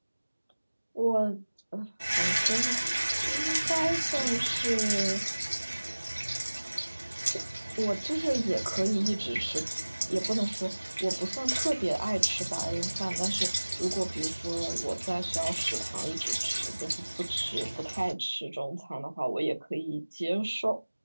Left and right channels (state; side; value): inverted; both; correlation -1.00